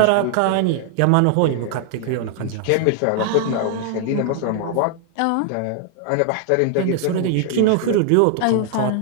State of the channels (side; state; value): both; different; correlation 0.00